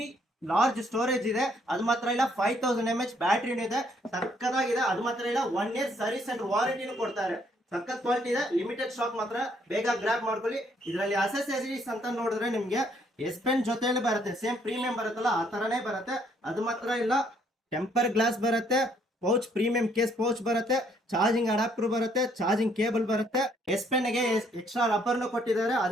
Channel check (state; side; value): normal; both; correlation 0.67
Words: ಲಾರ್ಜ್ ಸ್ಟೋರೇಜ್ ಇದೆ. ಅದು ಮಾತ್ರ ಇಲ್ಲ, 5000 mAh ಬ್ಯಾಟ್ರಿನೂ ಇದೆ. ಸಕ್ಕದಾಗಿದೆ. ಅದು ಮಾತ್ರ ಇಲ್ಲ, 1 year ಸರ್ವಿಸ್ ಅಂಡ್ ವಾರಂಟಿನೂ ಕೊಡ್ತಾರೆ. ಸಕ್ಕತ್ ಕ್ವಾಲಿಟಿ ಇದೆ. ಲಿಮಿಟೆಡ್ ಸ್ಟಾಕ್ ಮಾತ್ರ, ಬೇಗ ಗ್ರಾಬ್ ಮಾಡ್ಕೊಳ್ಳಿ. ಇದರಲ್ಲಿ ಅಸೆಸರೀಸ್ ಅಂತ ನೋಡಿದ್ರೆ ನಿಮ್ಗೆ ಎಸ್ ಪೆನ್ ಜೊತೆಯಲ್ಲಿ ಬರುತ್ತೆ. ಸೇಮ್ ಪ್ರೀಮಿಯಂ ಬರುತ್ತಲ್ಲ ಆ ತರನೇ ಬರುತ್ತೆ. ಅದು ಮಾತ್ರ ಇಲ್ಲ, ಟೆಂಪರ್ ಗ್ಲಾಸ್ ಬರುತ್ತೆ, ಪೌಚ್ ಪ್ರೀಮಿಯಂ ಕೇಸ್ ಪೌಚ್ ಬರುತ್ತೆ, ಚಾರ್ಜಿಂಗ್ ಅಡಾಪ್ಟರ್ ಬರುತ್ತೆ, ಚಾರ್ಜಿಂಗ್ ಕೇಬಲ್ ಬರುತ್ತೆ. ಎಸ್ ಪೆನ್ ಗೆ ಎಕ್ಸ್ಟ್ರಾ ರಬ್ಬರ್ನು ಕೊಟ್ಟಿದ್ದಾರೆ.